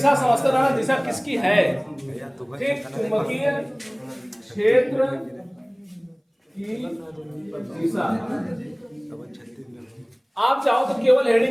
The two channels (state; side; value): identical; both; correlation 1.00